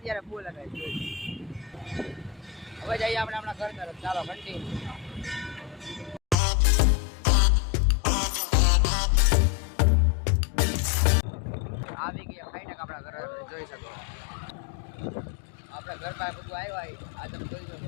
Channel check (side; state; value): right; drops out; at 6.4 s